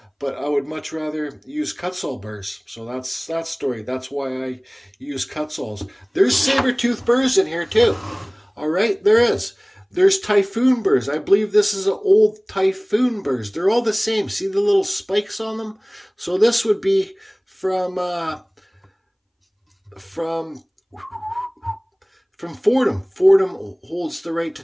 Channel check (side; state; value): both; identical; correlation 1.00